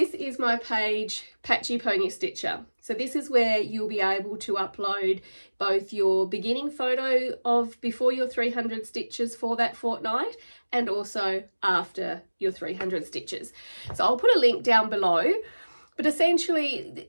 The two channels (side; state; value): both; inverted; correlation -1.00